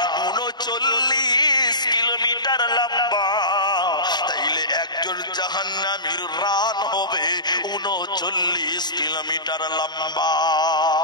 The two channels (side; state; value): right; late; 0.21 ms